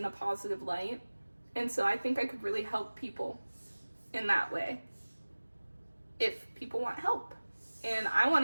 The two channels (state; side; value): inverted; both; correlation -1.00